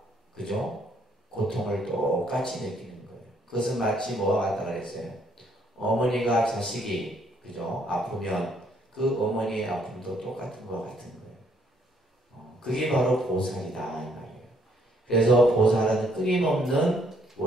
그죠? 고통을 똑같이 느끼는 거예요. 그것은 마치 뭐와 같다 그랬어요. 어머니가 자식이 그죠? 아프면 그 어머니의 아픔도 똑같은 것 같은 거예요. 그게 바로 보살이다 이 말이에요. 그래서 보살은 끊임없는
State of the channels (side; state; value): both; normal; correlation 0.68